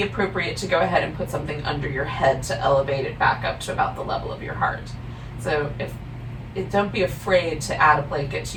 appropriate to go ahead and put something under your head to elevate it back up to about the level of your heart. So don't be afraid to add a blanket to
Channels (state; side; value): identical; both; correlation 1.00